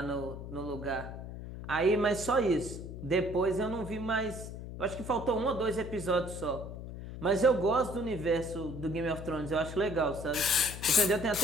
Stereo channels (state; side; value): noise; left; hum, 10 dB below the sound